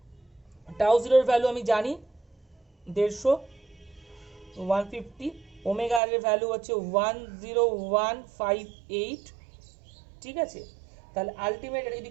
টাউ জিরোর ভ্যালু আমি জানি 150, 150, ওমেগা আর এর ভ্যালু হচ্ছে 10158, ঠিক আছে। তাহলে আলটিমেট এটা যদি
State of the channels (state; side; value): drops out; left; at 6.0 s